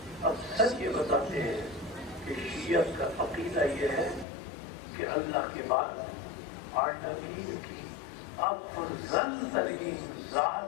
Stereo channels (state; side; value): drops out; right; at 4.2 s